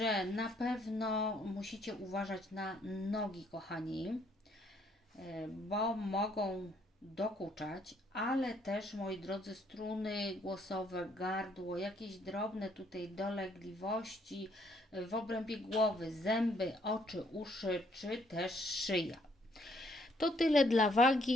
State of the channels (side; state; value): both; normal; correlation 0.67